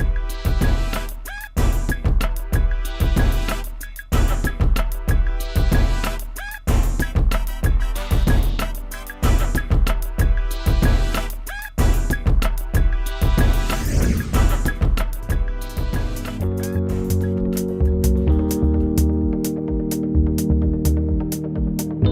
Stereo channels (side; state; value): both; identical; correlation 1.00